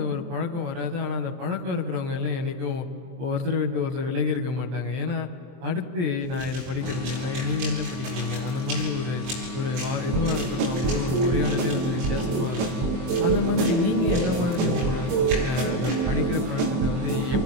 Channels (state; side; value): late; left; 23 ms